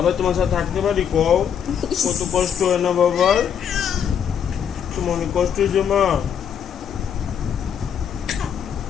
তোমার সাথে থাকতে পারি? কও কত কষ্ট হয় না বাবার? তোমার অনেক কষ্ট হয়েছে মা।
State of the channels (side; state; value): right; quieter; 8.2 dB